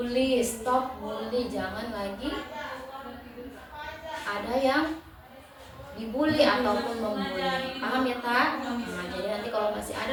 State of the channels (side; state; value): both; identical; correlation 1.00